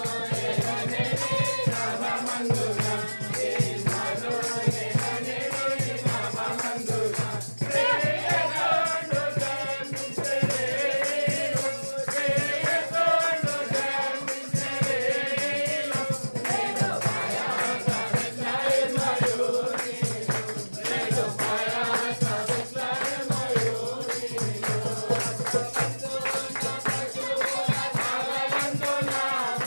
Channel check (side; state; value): both; inverted; correlation -1.00